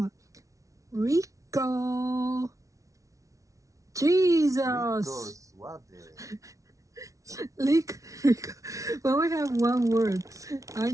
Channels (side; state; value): left; late; 0.16 ms